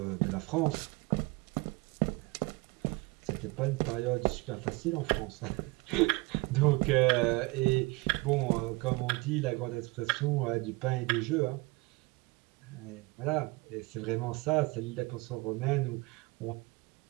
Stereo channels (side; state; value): left; quieter; 24.7 dB